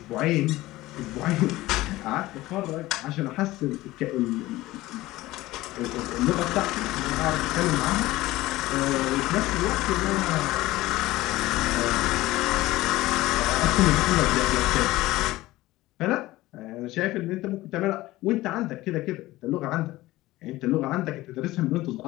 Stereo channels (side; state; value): right; quieter; 17.8 dB